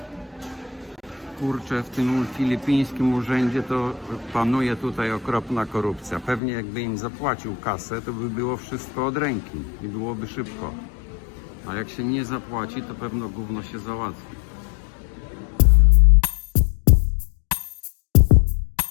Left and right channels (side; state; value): right; drops out; at 6.4 s